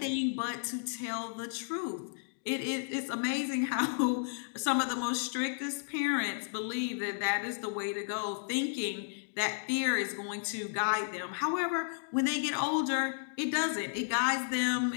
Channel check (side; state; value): right; silent; digital silence